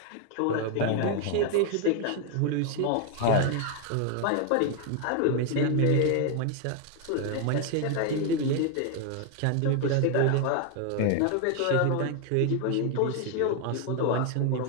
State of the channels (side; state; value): both; different; correlation 0.01